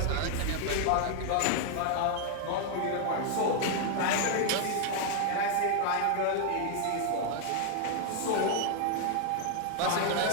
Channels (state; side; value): different; both; correlation 0.00